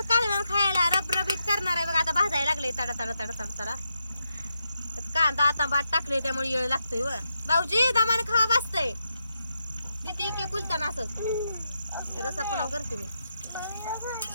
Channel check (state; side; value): inverted; both; correlation -0.85